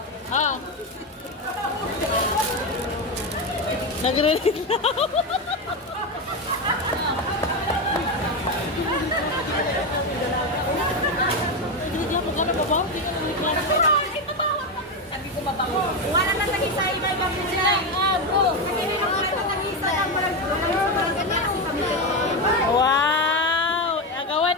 Oh. Nagre-read na. Hindi ako gano'n ba? Sabi ko mabango. Wala na lagi sa iba-ibang sila. Kasi nilangisa lang Wow! Agawan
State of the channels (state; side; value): normal; both; correlation 0.12